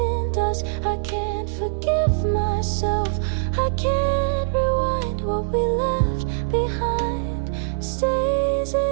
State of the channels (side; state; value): left; silent; 59 dB below the other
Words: dust. I can't forgive myself, I can't rewind. What we left behind stays